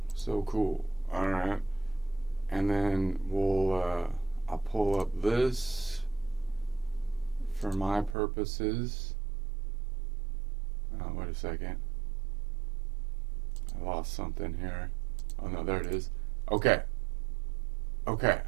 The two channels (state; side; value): drops out; left; at 8.2 s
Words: So cool. Alright. And then I'll pull up this for my purposes. Wait a second. I lost something here. Oh no, there it is. Okay.